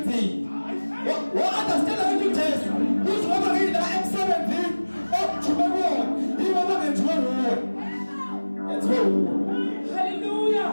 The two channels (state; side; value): inverted; both; correlation -1.00